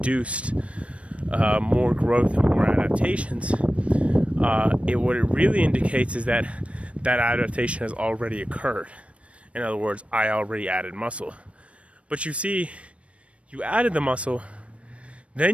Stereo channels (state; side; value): late; left; 0.062 ms